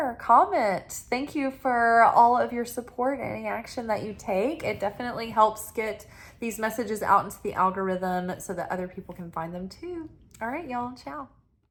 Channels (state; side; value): identical; both; correlation 1.00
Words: comment. Thank you for all of your support and any action that you take. It definitely helps get these messages out into the algorithm so that other people can find them too. All right, y'all. Ciao.